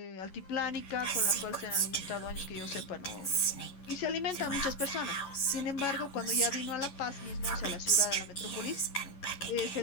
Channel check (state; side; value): late; right; 11 ms